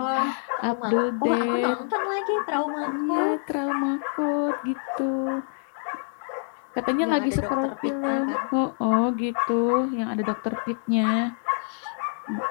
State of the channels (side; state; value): right; silent; 56 dB below the other